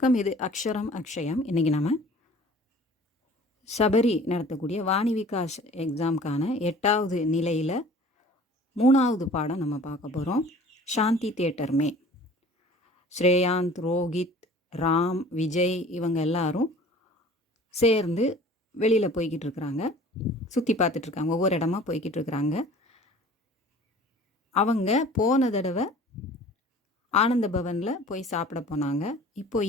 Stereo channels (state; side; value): normal; both; correlation 0.47